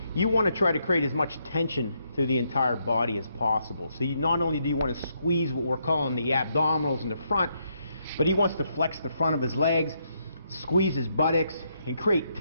You want to try to create as much tension through the entire body as possible. So not only do you want to squeeze what we're calling the abdominals in the front, but he wants to flex the front of his legs, squeeze his buttocks, and create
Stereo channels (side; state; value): both; inverted; correlation -0.77